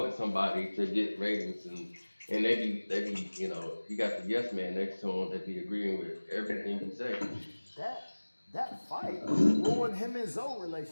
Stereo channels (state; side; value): inverted; both; correlation -1.00